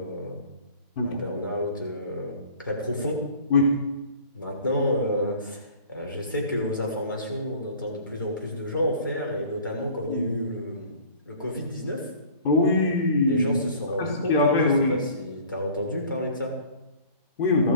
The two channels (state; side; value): inverted; both; correlation -0.48